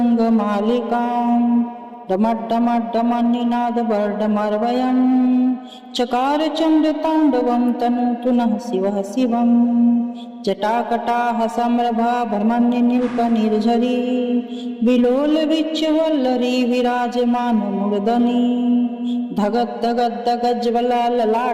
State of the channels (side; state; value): both; identical; correlation 1.00